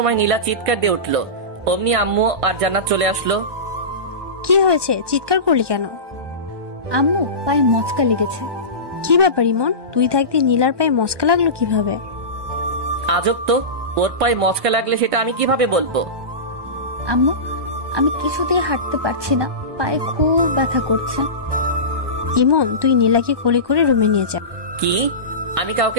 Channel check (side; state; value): left; late; 1.2 ms